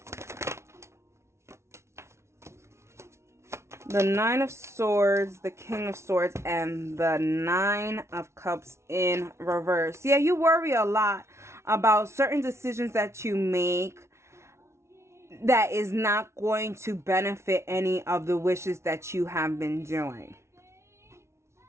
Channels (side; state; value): left; late; 0.13 ms